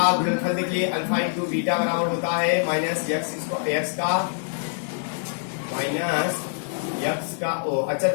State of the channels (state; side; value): silent; right; digital silence